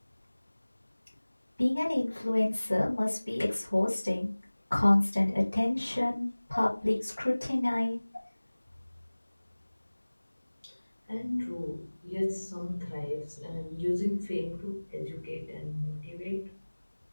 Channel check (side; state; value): both; inverted; correlation -1.00